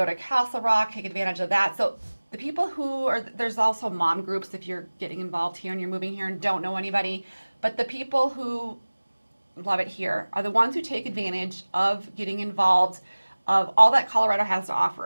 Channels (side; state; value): both; inverted; correlation -1.00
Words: to Castle Rock, take advantage of that. So the people who are, there's also mom groups if you're getting involved here and you're moving here and don't know anybody, but the people who love it here are the ones who take advantage of getting involved of all that Colorado has to